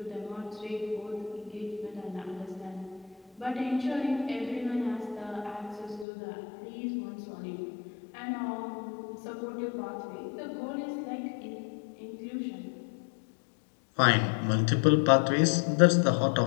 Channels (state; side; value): drops out; right; at 6.1 s